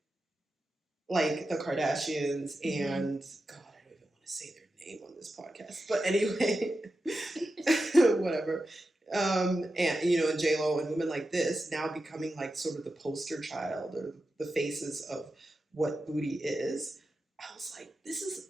like the Kardashians and, God, I don't even want to say their name on this podcast, but anyway, whatever. And J-Lo and women like this now becoming like sort of the poster child or the faces of what booty is. I was like, this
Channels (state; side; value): normal; both; correlation 0.90